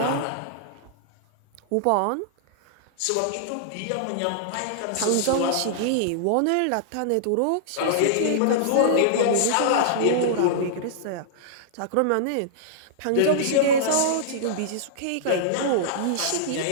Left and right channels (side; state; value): both; different; correlation -0.01